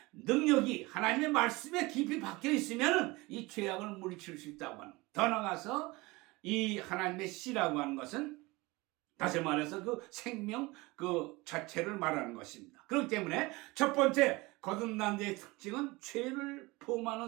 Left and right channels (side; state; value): left; quieter; 22.8 dB